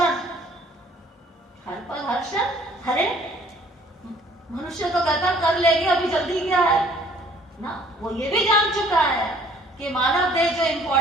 हर पल हर क्षण। अरे मनुष्य तो कहता कर लेंगे, अभी जल्दी क्या है ना। वो ये भी जान चुका है कि मानव देह जो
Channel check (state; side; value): normal; both; correlation 0.58